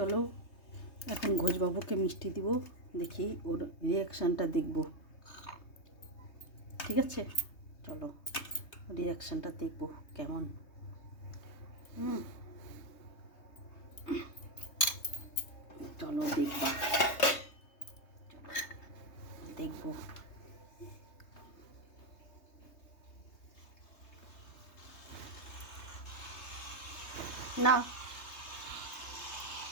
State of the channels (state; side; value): late; right; 3.2 ms